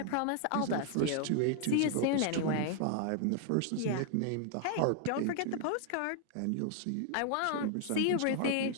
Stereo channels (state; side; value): different; both; correlation 0.00